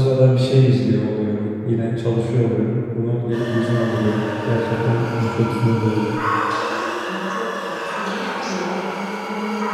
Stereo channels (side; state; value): both; identical; correlation 1.00